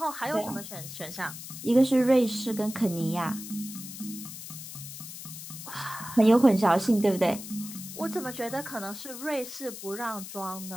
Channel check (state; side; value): noise; left; hiss, 11 dB below the sound